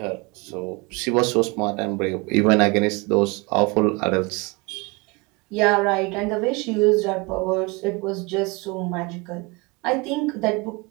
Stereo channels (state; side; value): quieter; left; 27.3 dB